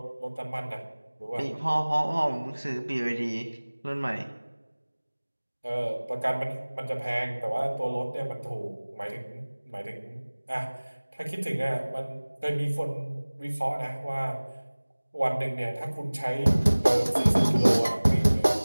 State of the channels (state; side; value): inverted; both; correlation -1.00